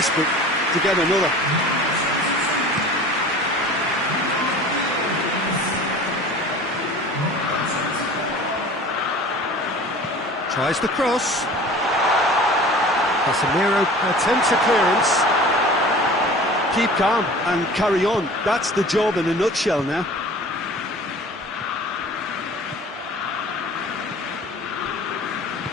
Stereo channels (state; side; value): normal; both; correlation 0.42